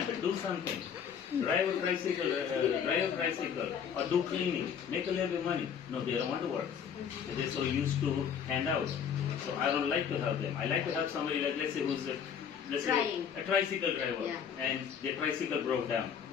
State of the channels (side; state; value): right; quieter; 7.7 dB